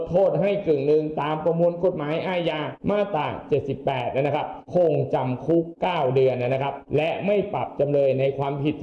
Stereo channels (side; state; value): both; identical; correlation 1.00